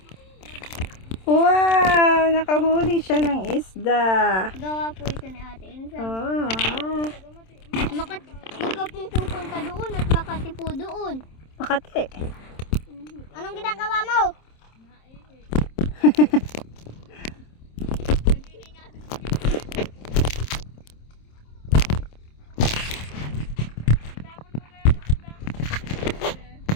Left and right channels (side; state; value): right; late; 27 ms